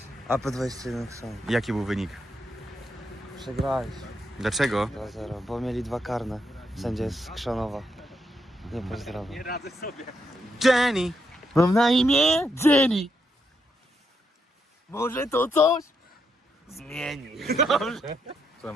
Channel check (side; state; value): both; normal; correlation 0.80